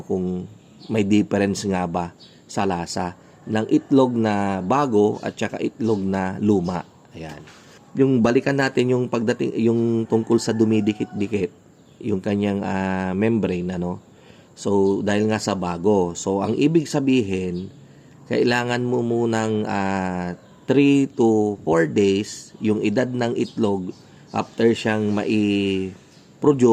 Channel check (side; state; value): both; identical; correlation 1.00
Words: kung may difference nga ba sa lasa ng itlog na bago at saka itlog na luma. Ayan. Yung balikan natin yung pagdating yung tungkol sa dumidikit-dikit yung kanyang membrane, So dahil nga sa bago. So ang ibig sabihin, kailangan mo munang 3 to 4 days yung edad ng itlog after siyang